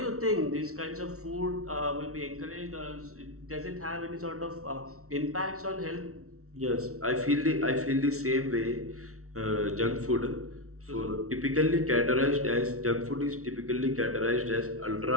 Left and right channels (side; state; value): left; late; 0.63 ms